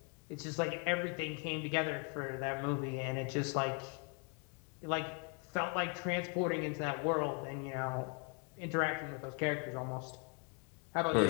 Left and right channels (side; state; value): right; quieter; 35.3 dB